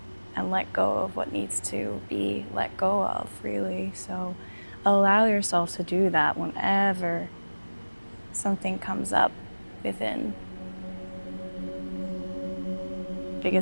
and let go of what needs to be let go of, really. So allow yourself to do that whenever something comes up within.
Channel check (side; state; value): both; inverted; correlation -1.00